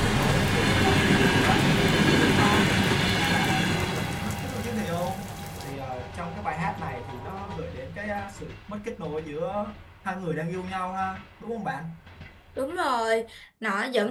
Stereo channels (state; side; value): identical; both; correlation 1.00